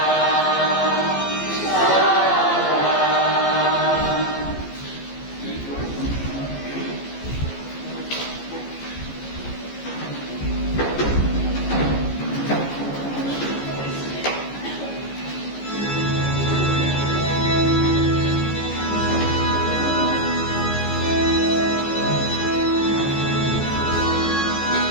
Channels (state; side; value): late; right; 14 ms